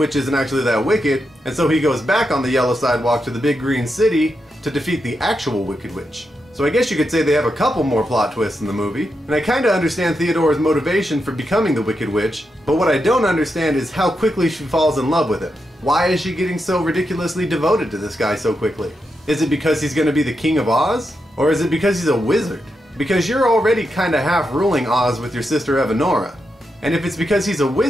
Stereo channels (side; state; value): both; normal; correlation 0.85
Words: isn't actually that wicked, and so he goes back on the yellow sidewalk to the big green city to defeat the actual wicked witch. So I guess you could say they have a couple more plot twists in the movie, and I kinda understand Theodora's motivation for becoming the Wicked Witch, but what I don't understand is how quickly she falls in love with him. Why is she getting so ridiculously devoted to this guy so quickly? Is it because he's gonna be the King of Oz? Or is it because he's a wizard? Because you're already kinda half ruling Oz with your sister Evanora. And if it's because he's a